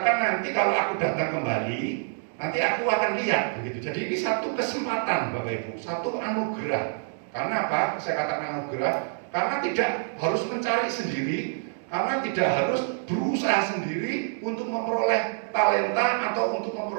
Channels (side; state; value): left; silent; digital silence